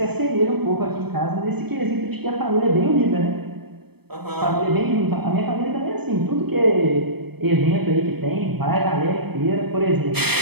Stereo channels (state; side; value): late; left; 0.97 ms